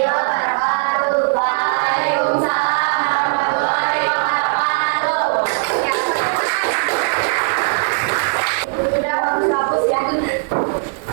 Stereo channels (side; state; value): left; silent; 67 dB below the other